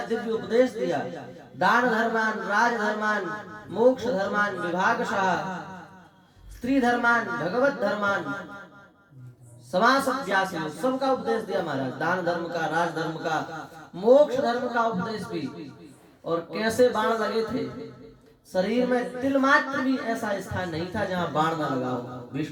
दिव्य उपदेश दिया। दान धर्मान, राज धर्मान, मोक्ष धर्मान, विभागशः, स्त्री धर्मान, भगवत धर्मान, समास अभ्यास, सबका उपदेश दिया महाराज। दान धर्म का, राज धर्म का, मोक्ष धर्म का उपदेश भी। और कैसे बाण लगे थे, शरीर में तिल मात्र भी ऐसा स्थान नहीं था जहां बाण न लगा हो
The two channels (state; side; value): identical; both; correlation 1.00